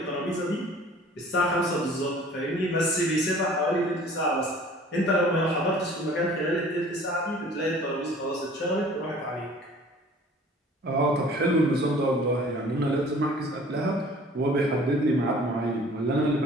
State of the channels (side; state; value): both; normal; correlation 0.49